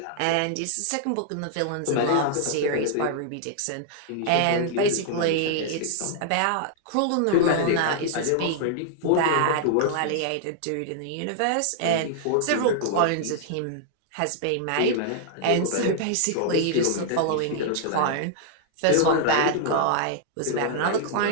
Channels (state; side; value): different; both; correlation -0.01